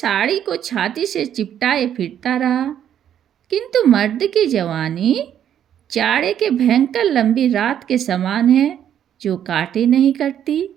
को छाती से चिपटाए फिरता रहा। किंतु मर्द की जवानी जाड़े के भयंकर लंबी रात के समान है, जो काटे नहीं करती।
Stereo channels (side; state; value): left; quieter; 9.9 dB